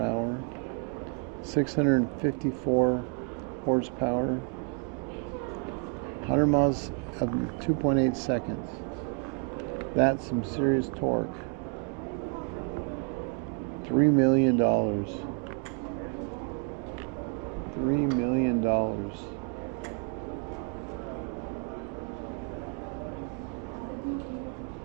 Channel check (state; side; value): quieter; left; 36.1 dB